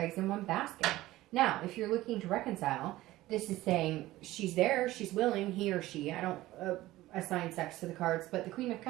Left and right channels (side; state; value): left; quieter; 16.8 dB